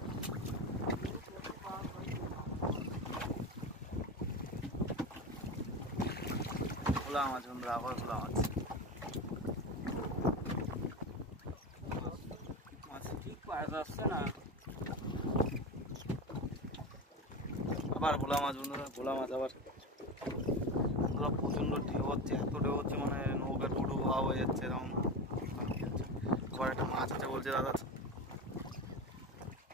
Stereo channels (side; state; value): both; normal; correlation 0.24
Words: ভোলা মাছ বন্ধুরা, আবার ভোলা মাছ। মাছ ঠিক পাওয়া যাচ্ছে না, আবার ভোলা মাছ বন্ধুরা, ভোলা মাছ আবার বন্ধুরা। প্রচণ্ড ঢেউ হচ্ছে, এত ঢেউ হচ্ছে মানে নৌকা ডুডু ভাব হয়ে যাচ্ছে এরকম। আবার একটা মাছ আছে বলছে দাদা,